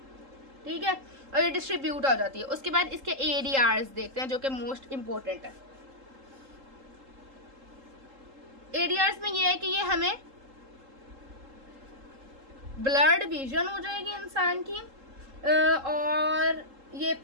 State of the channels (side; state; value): left; late; 3.8 ms